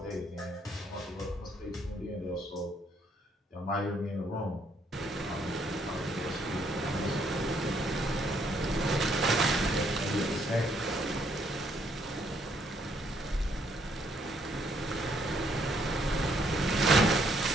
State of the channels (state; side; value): normal; both; correlation 0.70